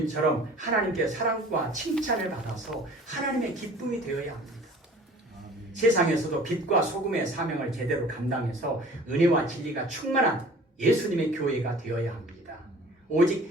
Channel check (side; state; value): both; normal; correlation 0.47